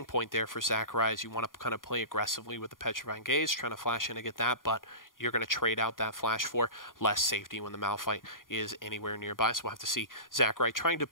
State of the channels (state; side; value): late; right; 0.90 ms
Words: point there for Zachary, as you want to kind of play aggressively with the Petrifying Gaze, trying to flash in to get that, but you're going to trade out that flash for less safety when the Malphite is anywhere nearby. So we'll have to see Zachary trying to